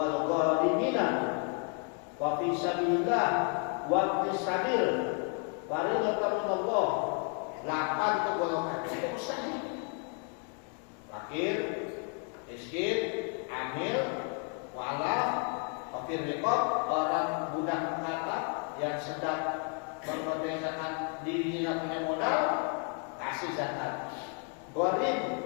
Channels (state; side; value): quieter; right; 38.9 dB